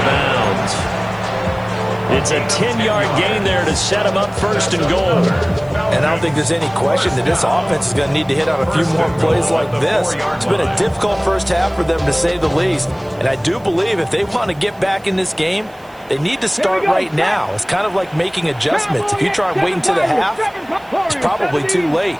bounds. It's a 10-yard gain there to set him up 1st and goal. And I don't think there's any question that this offense is going to need to hit on a few more plays like this. It's been a difficult 1st half for them, to say the least. And I do believe if they want to get back in this game, they need to start right now. It's kind of like making adjustments. If you try and wait until the half, it's probably too late.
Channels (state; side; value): noise; right; hiss, 30 dB below the sound